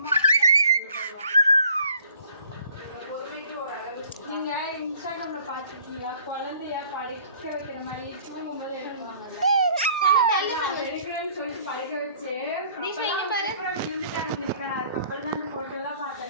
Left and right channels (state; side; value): inverted; both; correlation -0.54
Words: நீங்கள் இன்ஸ்டாகிராமில் பார்த்துருக்கீங்களா குழந்தைய படிக்க வைக்கிற மாதிரி தூங்கும்போது எடுக்கிறேன்னு சொல்லிட்டு படிக்க வச்சு விழுந்துட்டாங்க. அதுக்கப்புறம் தான் அந்த ஃபோட்டோலாம்